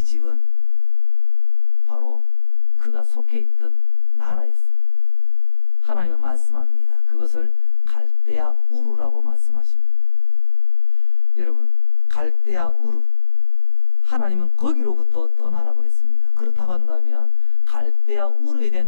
집은 바로 그가 속해 있던 나라였습니다. 하나님은 말씀합니다. 그것을 갈대아 우르라고 말씀하십니다. 여러분, 갈대아 우르, 하나님은 거기로부터 떠나라고 했습니다. 그렇다고 한다면 갈대아 우르에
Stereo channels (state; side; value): late; right; 22 ms